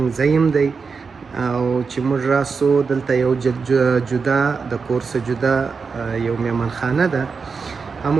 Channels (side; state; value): left; quieter; 5.1 dB